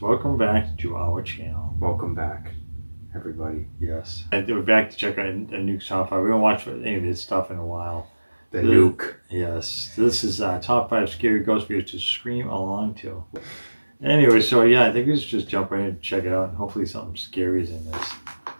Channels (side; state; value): both; inverted; correlation -1.00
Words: welcome back to our channel. Welcome back, everybody. Yes. We're back to check out a Nukes top 5. We haven't watched any of this stuff in a while. The Nuke. Yes. This is top 5 scary ghost videos to scream along to. Anyway, so yeah, I think we should just jump right in and check it out, and hopefully something scary is in this.